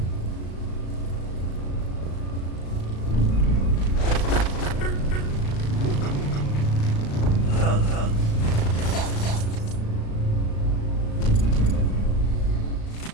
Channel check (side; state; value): right; late; 36 ms